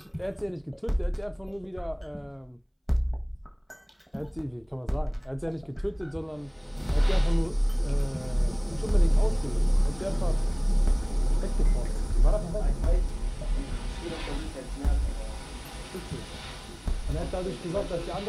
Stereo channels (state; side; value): identical; both; correlation 1.00